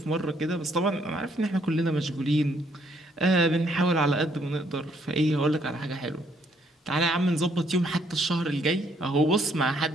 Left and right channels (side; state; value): both; normal; correlation 0.69